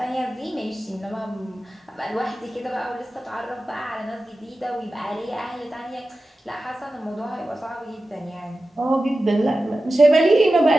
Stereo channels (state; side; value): normal; both; correlation 0.94